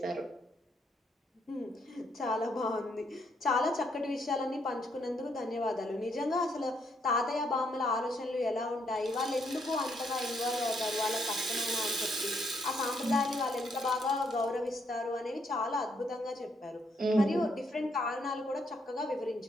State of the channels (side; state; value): both; normal; correlation 0.74